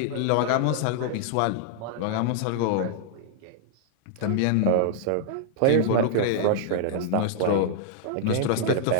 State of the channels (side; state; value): both; different; correlation -0.01